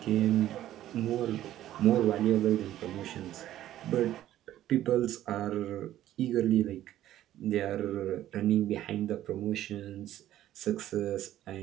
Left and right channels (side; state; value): left; quieter; 13.0 dB